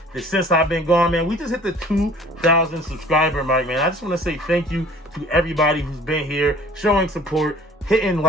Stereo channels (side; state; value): both; normal; correlation 0.50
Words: since I've been gone, man. We just hit the 2,000 subscriber mark, man. I just want to say thank you to everybody who's been here, showing support, hitting